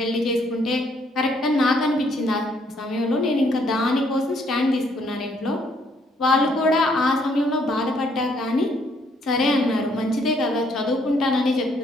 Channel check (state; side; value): normal; both; correlation 0.68